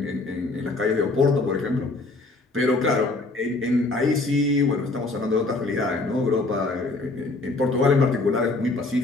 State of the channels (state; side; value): quieter; right; 3.3 dB